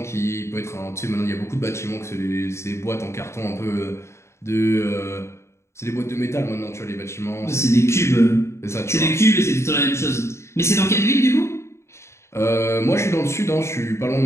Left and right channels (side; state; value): right; late; 0.13 ms